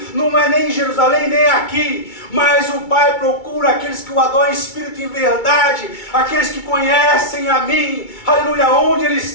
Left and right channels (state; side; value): late; right; 2.3 ms